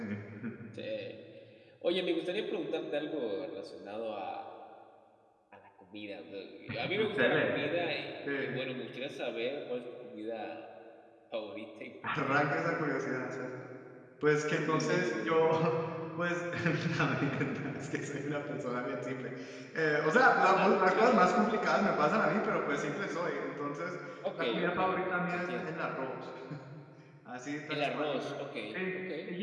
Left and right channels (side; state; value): both; identical; correlation 1.00